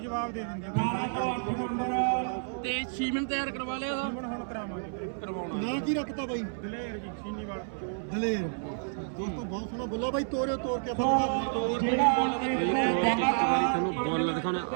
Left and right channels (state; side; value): silent; left; 58 dB below the other